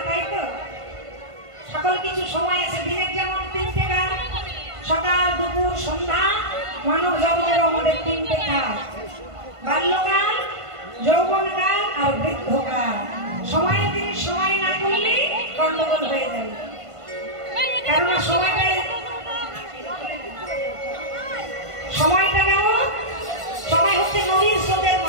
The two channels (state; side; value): late; left; 1.5 ms